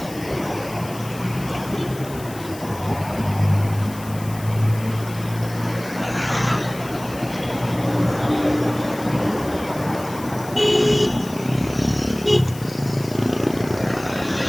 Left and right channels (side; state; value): left; noise; hiss, 17 dB below the sound